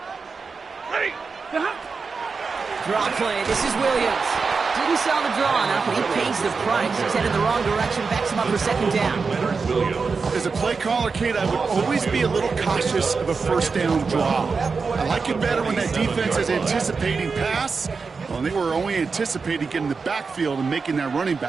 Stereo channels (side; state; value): left; quieter; 4.8 dB